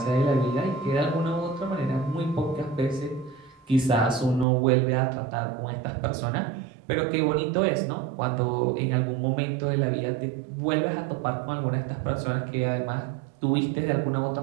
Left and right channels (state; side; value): drops out; left; at 4.5 s